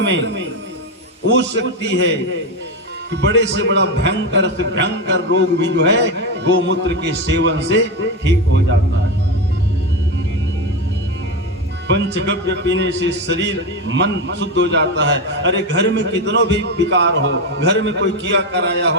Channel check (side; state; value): both; normal; correlation 0.14